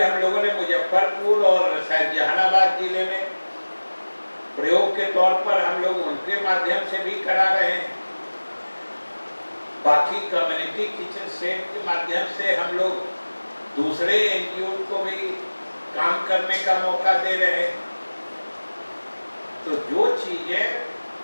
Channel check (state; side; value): inverted; both; correlation -1.00